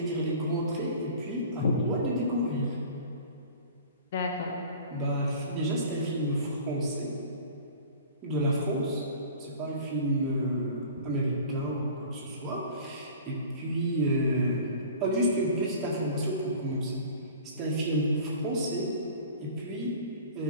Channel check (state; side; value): inverted; both; correlation -0.42